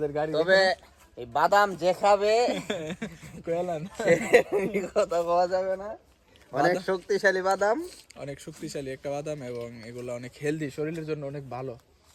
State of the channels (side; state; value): both; identical; correlation 1.00